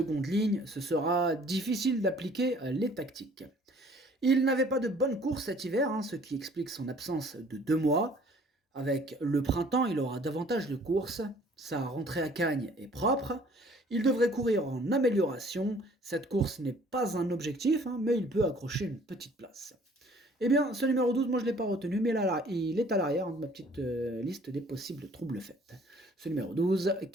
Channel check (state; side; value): normal; both; correlation 0.55